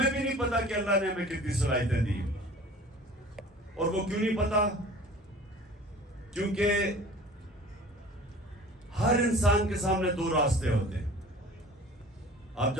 بھی نہیں پتا کہ اللہ نے ہمیں کتنی صلاحیتیں دی. اور وہ کیوں نہیں پتا؟ کیونکہ ہر انسان کے سامنے دو راستے ہوتے ہیں. آپ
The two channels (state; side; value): normal; both; correlation 0.44